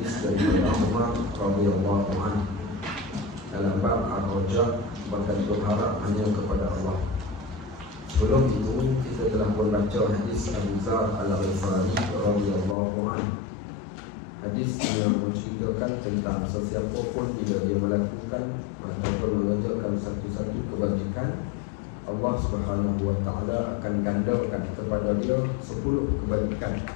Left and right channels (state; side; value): drops out; right; at 12.8 s